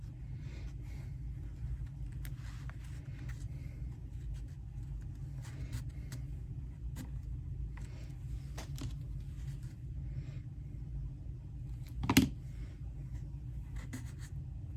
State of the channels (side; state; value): both; identical; correlation 1.00